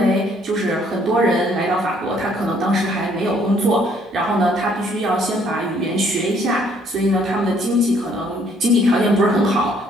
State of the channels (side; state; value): both; normal; correlation 0.64